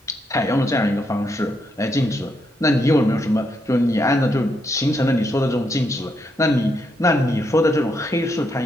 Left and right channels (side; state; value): both; normal; correlation 0.78